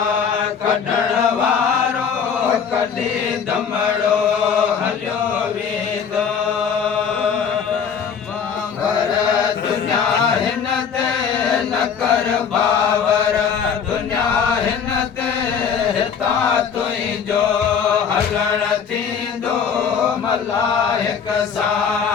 कढण वारो कॾहिं दमड़ो हलियो वेंदो पर दुनिया हिन ते न कर बावर दुनिया हिन ते हिता तुंहिंजो हलण थींदो मलाइक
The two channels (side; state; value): right; quieter; 6.9 dB